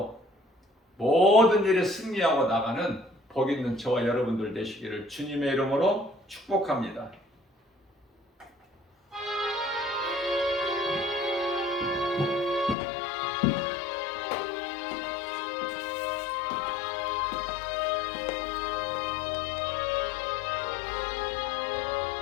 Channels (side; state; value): right; drops out; at 12.8 s